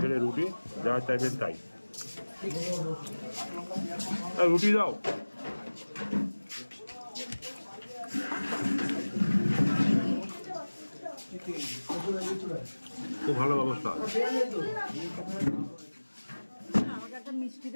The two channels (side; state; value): both; inverted; correlation -1.00